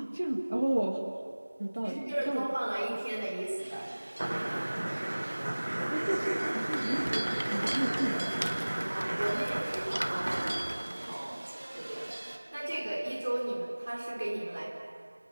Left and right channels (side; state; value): both; inverted; correlation -1.00